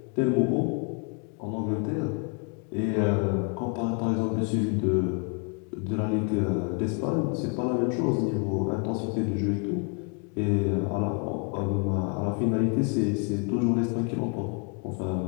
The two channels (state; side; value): quieter; right; 37.6 dB